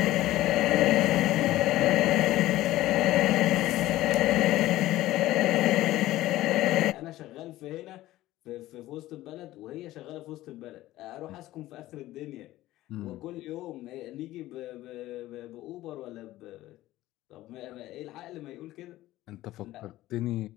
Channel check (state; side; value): quieter; right; 15.9 dB